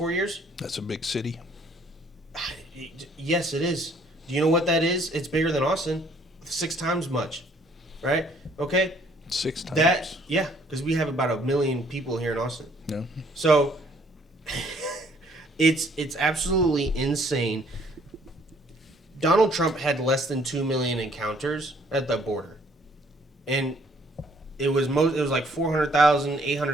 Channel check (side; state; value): both; normal; correlation 0.62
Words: years? That's a big city. Yes, it is. Do you know what that is? It's bigger than Austin. 6 times much. Right? Okay? 6 times. Yeah, because we have about 1 million people here in Austin. Yeah. So it's absolutely insane. Donald Trump had less than 2 million encounters at the border. And it was like 400,000,